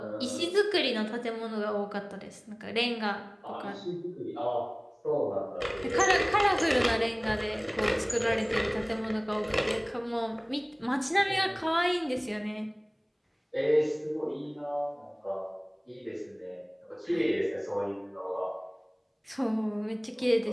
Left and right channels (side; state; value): both; identical; correlation 1.00